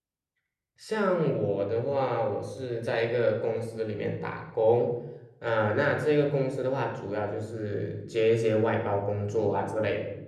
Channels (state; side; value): identical; both; correlation 1.00